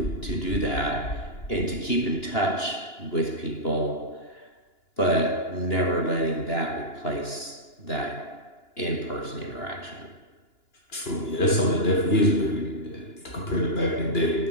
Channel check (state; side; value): late; right; 2.9 ms